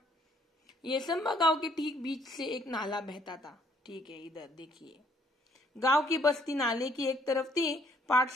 येसंबा गांव के ठीक बीच से एक नाला बहता था। ठीक है, इधर देखिए। गांव की बस्ती नाले की एक तरफ थी,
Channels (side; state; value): both; normal; correlation 0.65